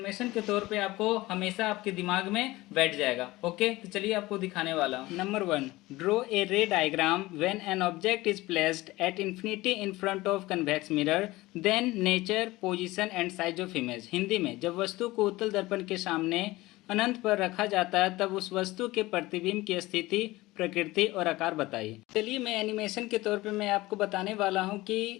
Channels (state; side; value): quieter; right; 19.3 dB